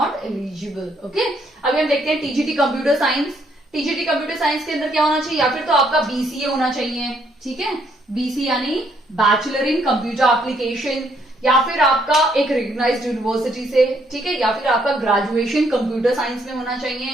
eligible. Okay, अभी हम देखते हैं TGT computer science. TGT computer science के अंदर क्या होना चाहिए, या फिर तो आपका बीसीए होना चाहिए। ठीक है, बीसी यानी बैचलर इन कंप्यूटर एप्लीकेशन, या फिर आपका एक रिकॉग्नाइज्ड यूनिवर्सिटी से, ठीक है, या फिर आपका ग्रेजुएशन कंप्यूटर साइंस में होना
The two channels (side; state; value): both; normal; correlation 0.70